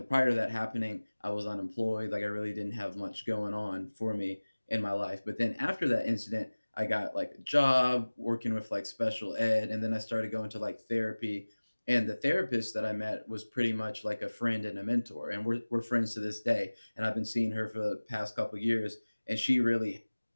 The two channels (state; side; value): inverted; both; correlation -1.00